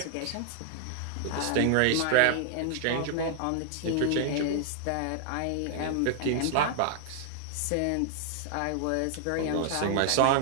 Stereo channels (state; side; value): different; both; correlation 0.00